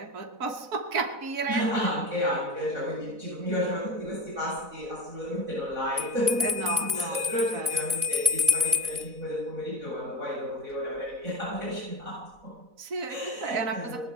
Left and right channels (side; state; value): left; late; 4.0 ms